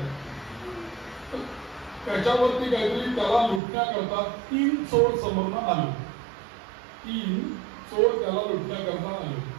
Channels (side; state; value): left; drops out; at 3.6 s